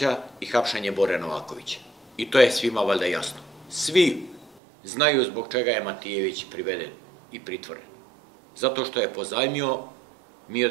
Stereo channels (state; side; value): drops out; left; at 4.6 s